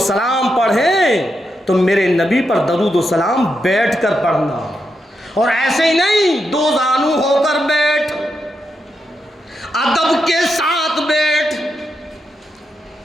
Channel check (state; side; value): normal; both; correlation 0.84